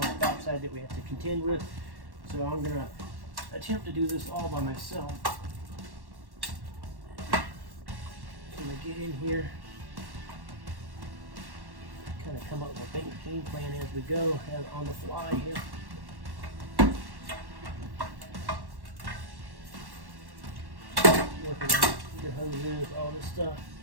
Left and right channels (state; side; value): late; left; 1.1 ms